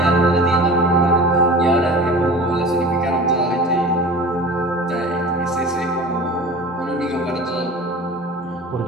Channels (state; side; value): normal; both; correlation 0.38